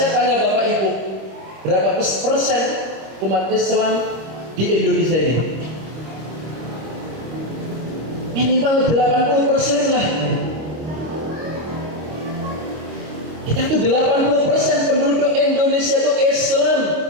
tanya Bapak Ibu, berapa persen umat Islam di Indonesia ini? Minimal 80% lah. Kita tuh 80% penduduk Indonesia itu Islam,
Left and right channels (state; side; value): late; left; 26 ms